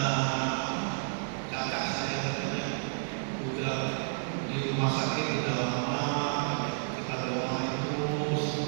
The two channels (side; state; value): left; silent; digital silence